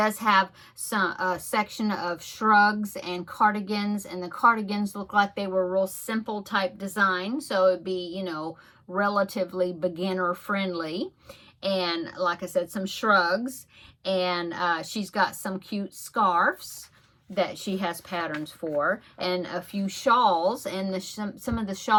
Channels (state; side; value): identical; both; correlation 1.00